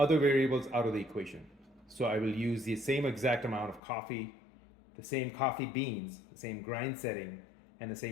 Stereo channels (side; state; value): right; drops out; at 3.8 s